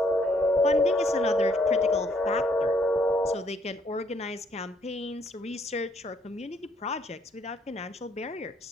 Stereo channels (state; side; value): normal; both; correlation 0.68